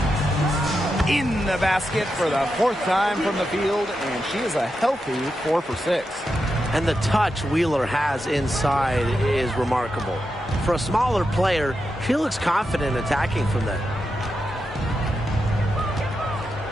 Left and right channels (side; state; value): both; normal; correlation 0.87